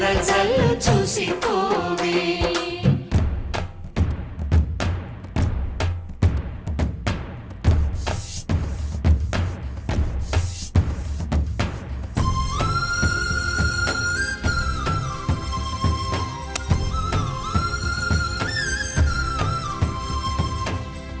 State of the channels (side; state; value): both; identical; correlation 1.00